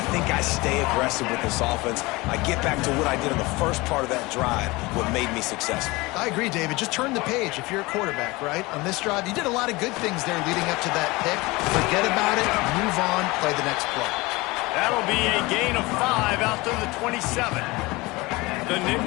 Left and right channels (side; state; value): right; quieter; 22.6 dB